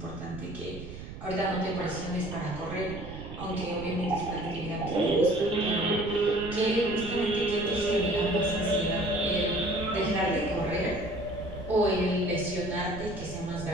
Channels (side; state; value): right; noise; rumble, 11 dB below the sound